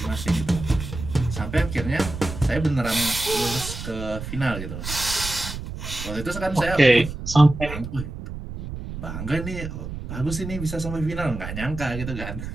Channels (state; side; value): noise; right; rumble, 8 dB below the sound